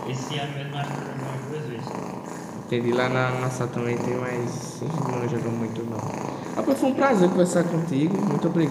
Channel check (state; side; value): identical; both; correlation 1.00